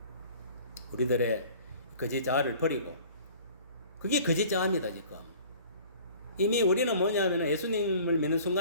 우리들의 거짓 자아를 버리고 그게 거짓 자아입니다. 지금 이미 우리는 뭐냐면 예수님을 믿는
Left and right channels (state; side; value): inverted; both; correlation -0.48